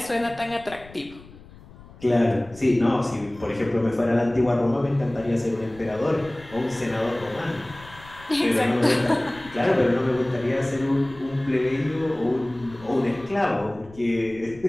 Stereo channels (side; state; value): left; noise; rumble, 21 dB below the sound